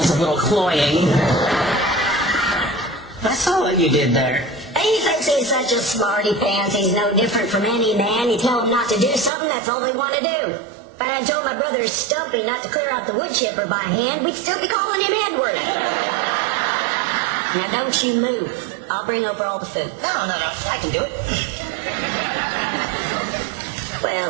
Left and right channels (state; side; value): drops out; left; at 9.3 s